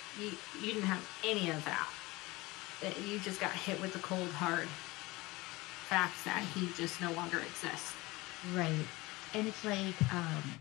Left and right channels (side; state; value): right; quieter; 21.5 dB